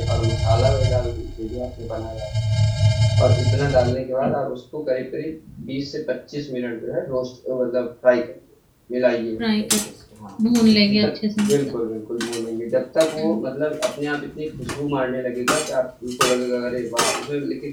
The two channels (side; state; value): both; identical; correlation 1.00